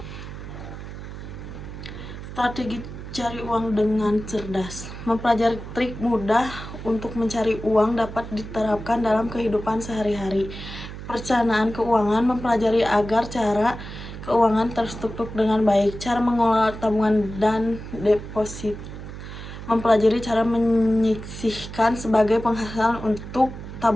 Strategi cari uang dengan cerdas. Mempelajari trik mudah untuk mencari uang dapat diterapkan dalam kehidupan sehari-hari. Perencanaan keuangan, mempelajari agar cara keuangan terstruktur dengan baik. Cara mengelola tabungan dan deposit. Mempelajari cara menyisihkan sebagai penghasilan untuk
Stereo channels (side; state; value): right; noise; hum, 11 dB below the sound